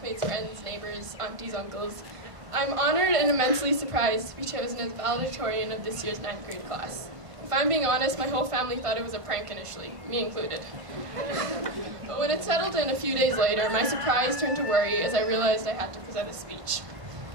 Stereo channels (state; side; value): late; left; 1.5 ms